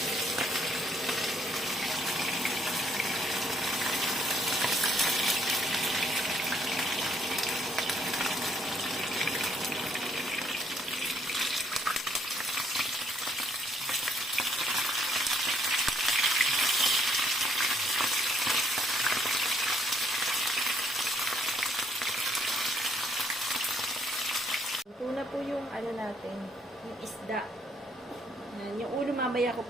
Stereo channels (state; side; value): normal; both; correlation 0.68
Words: Una po yung ano natin, yung isda. Yan, yung ulo mamaya ko